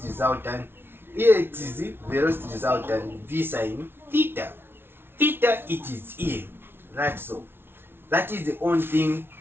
resultant. Here it is velocity resultant v sine theta. Theta, it is here. That's all. That is the only thing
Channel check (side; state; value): left; late; 0.11 ms